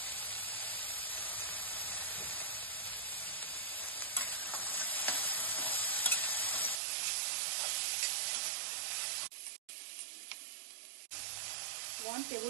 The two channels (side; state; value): left; drops out; at 6.8 s